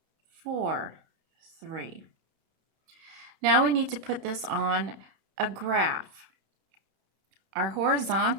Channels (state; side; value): late; left; 32 ms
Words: 4, 3. Now we need to put this on a graph. Our